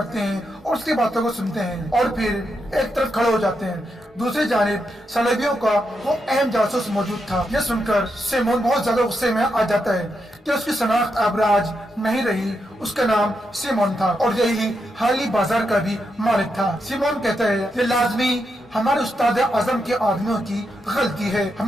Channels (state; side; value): normal; both; correlation 0.83